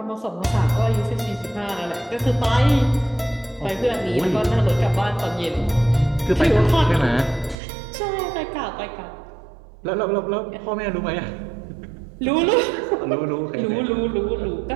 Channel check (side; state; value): left; drops out; at 7.6 s